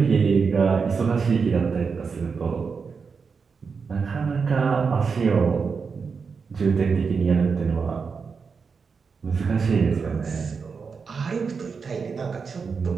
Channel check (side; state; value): left; quieter; 5.4 dB